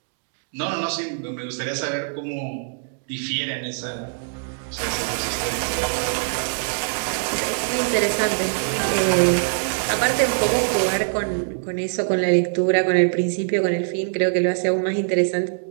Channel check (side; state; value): left; silent; digital silence